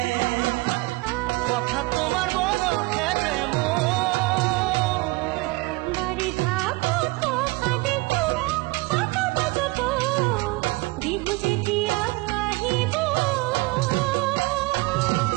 কথা তোমার বড় খেলে বাড়ি থাকো তো কাঁদে তো কত বাজত বিহু যেতিয়া আহিব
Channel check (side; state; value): left; quieter; 24.0 dB